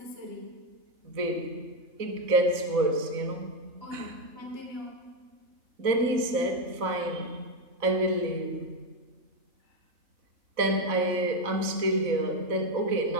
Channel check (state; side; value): late; left; 4.0 ms